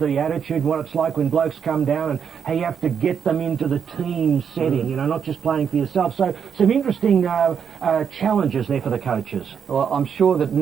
attitude, what it's like when blokes come down and how you have to get them into the team setting, you know, not just playing for yourself. So some interesting challenges there for the coaches. Well, I'm sure that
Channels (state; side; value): quieter; left; 7.3 dB